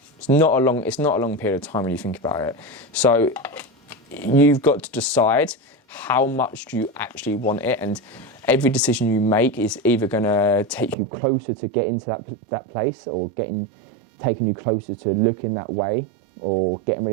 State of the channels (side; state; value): left; drops out; at 11.0 s